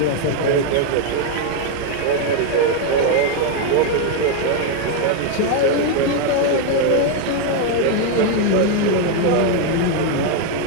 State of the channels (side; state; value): both; different; correlation 0.01